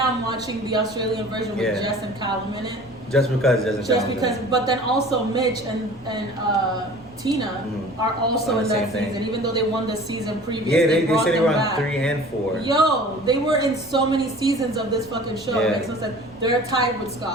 I'm watching the Australian version with Jess and Callum in it. Just because but then also Mitch and Tina are also in that season, even though they won the season previous. Yeah, they said they were on back. 3 and 4. Yo, they were in so many seasons of this fucking show. Yeah. It makes no sense. They're tied with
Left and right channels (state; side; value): normal; both; correlation 0.44